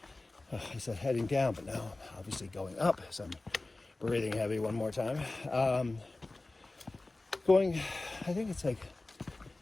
I said heading down, but now I'm obviously going up, so I'm breathing heavy one more time. Going, I think it's like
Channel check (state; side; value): quieter; right; 3.0 dB